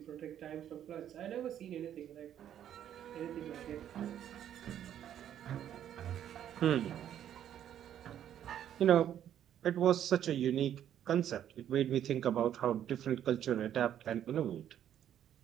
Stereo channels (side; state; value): left; quieter; 10.4 dB